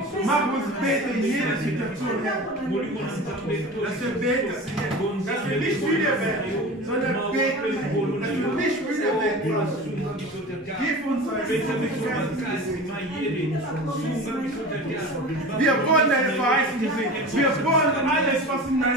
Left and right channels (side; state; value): both; normal; correlation 0.34